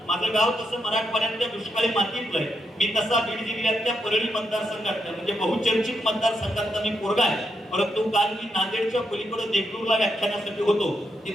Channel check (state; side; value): normal; both; correlation 0.81